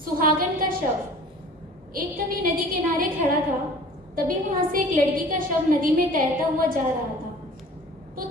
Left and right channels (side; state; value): both; normal; correlation 0.46